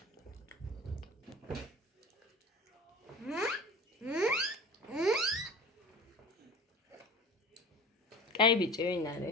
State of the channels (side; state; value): both; normal; correlation 0.37